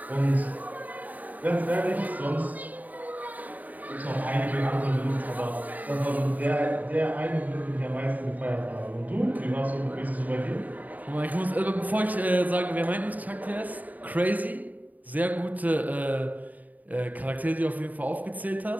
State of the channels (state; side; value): late; left; 0.078 ms